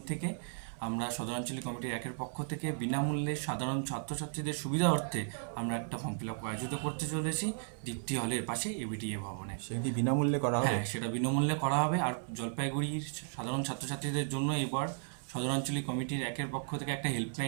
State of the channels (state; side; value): silent; left; 55 dB below the other